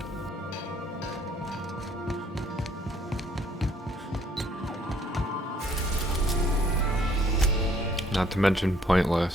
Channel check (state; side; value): normal; both; correlation 0.64